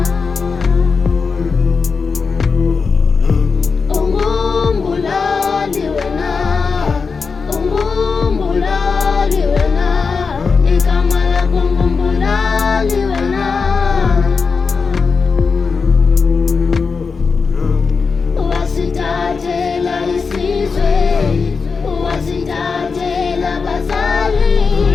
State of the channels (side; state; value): right; quieter; 5.0 dB